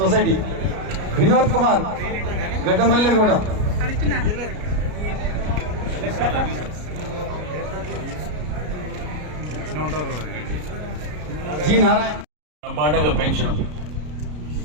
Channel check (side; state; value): left; late; 33 ms